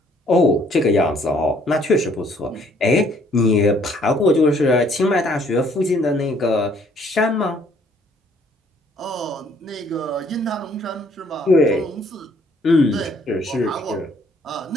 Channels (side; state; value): both; normal; correlation 0.63